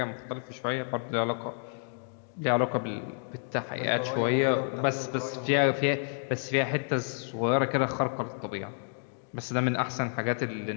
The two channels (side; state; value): right; silent; 58 dB below the other